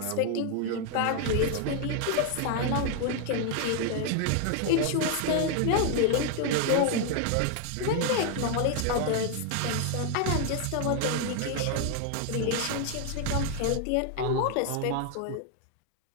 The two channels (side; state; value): both; different; correlation 0.00